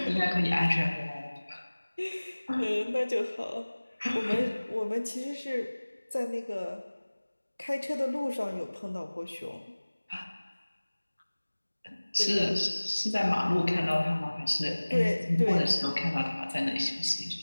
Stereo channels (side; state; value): both; inverted; correlation -1.00